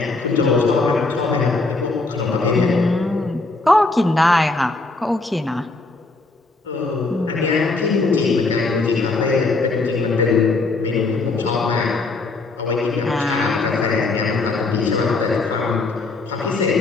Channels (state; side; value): quieter; right; 3.5 dB